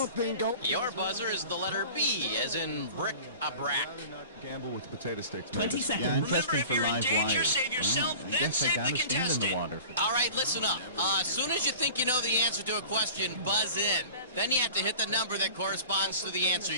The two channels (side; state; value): both; inverted; correlation -0.41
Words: think... Your buzzer is the letter B, as in bric-a-brac. Gamble with the potato sticks. 20 seconds. Yeah, interesting for live wire. save yourself, I guess I gotta stand in the water. All right, listen up. As soon as you think you know the answer to a question, buzz in. Then you have to hit the number that corresponds to the answer